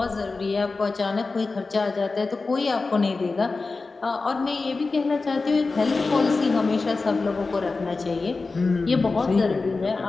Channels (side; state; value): right; quieter; 3.9 dB